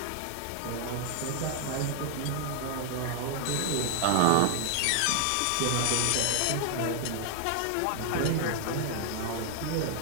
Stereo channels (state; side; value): different; both; correlation 0.00